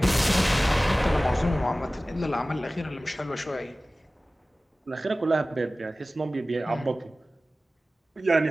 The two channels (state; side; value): normal; both; correlation 0.97